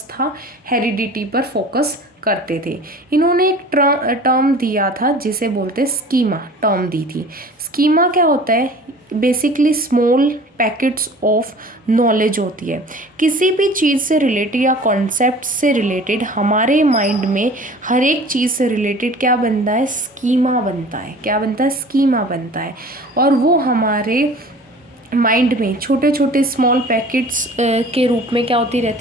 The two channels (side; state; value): both; normal; correlation 0.44